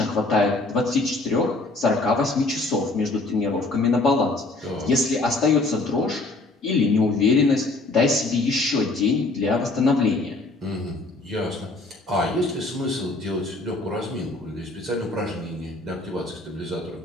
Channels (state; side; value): quieter; right; 3.1 dB